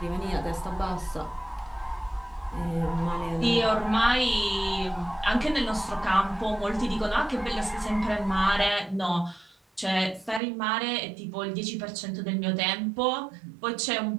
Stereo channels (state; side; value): drops out; left; at 10.4 s